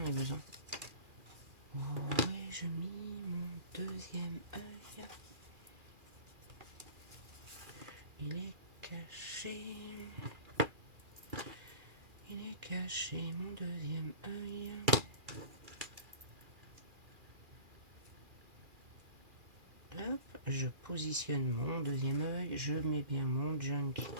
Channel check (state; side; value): late; left; 2.4 ms